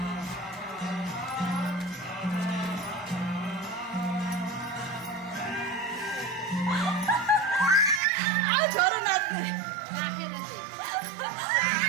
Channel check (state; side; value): drops out; left; at 8.0 s